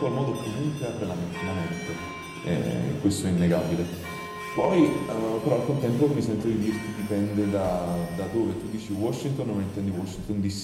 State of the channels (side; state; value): both; identical; correlation 1.00